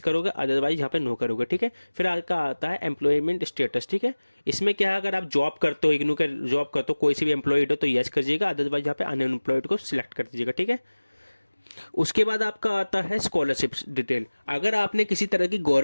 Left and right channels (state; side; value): inverted; both; correlation -1.00